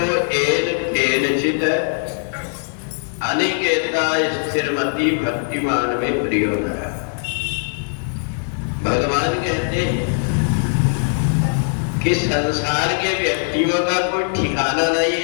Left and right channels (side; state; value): right; silent; digital silence